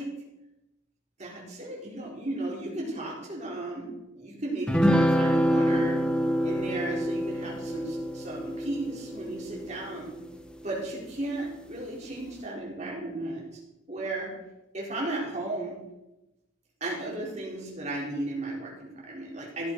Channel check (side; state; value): both; normal; correlation 0.78